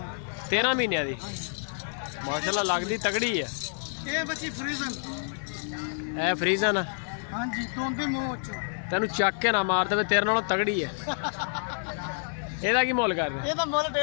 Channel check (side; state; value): right; silent; digital silence